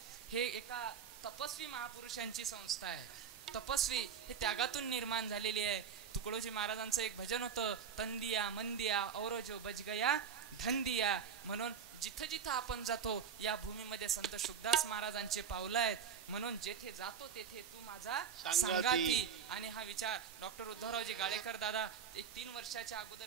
हे एका तपस्वी महापुरुषांची संस्था आहे. तपस्वी हे त्यागातून निर्माण झालेली आहे. तुकडोजी महाराजांचं एक भजन होतं, तंदिया मंदिया औरो जो बज गया धंदिया. म्हणून जिथं जिथं आपण जातो या भूमीमध्ये संत शुकदास महाराजांचे पावलं आहेत. म्हणून जेथे जातो तेथे तू माझा संगाती. आणि हा विचार डॉक्टर उद्धवरावजी गाळेकर दादा एक 3 वर्षाच्या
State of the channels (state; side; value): quieter; left; 7.3 dB